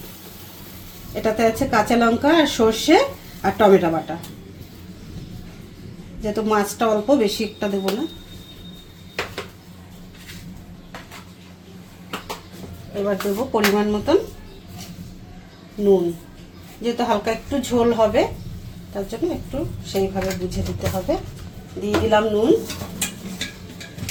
এটাতে আছে কাঁচা লঙ্কা আর সর্ষে আর টমেটো বাটা। যেহেতু মাছটা অল্প, বেশি একটা দেবো না। এবার দেবো পরিমাণ মতন নুন। যেহেতু হালকা একটু ঝোল হবে, তার জন্য একটু সেইভাবে বুঝে দিতে হবে। দিয়ে দিলাম নুন,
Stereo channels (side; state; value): both; identical; correlation 1.00